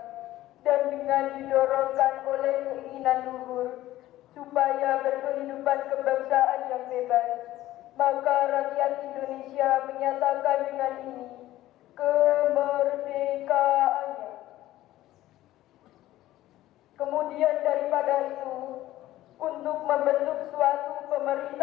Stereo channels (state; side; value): quieter; right; 15.2 dB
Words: dan dengan didorongkan oleh keinginan luhur supaya berkehidupan kebangsaan yang bebas, maka rakyat Indonesia menyatakan dengan ini kemerdekaannya. Kemudian daripada itu, untuk membentuk suatu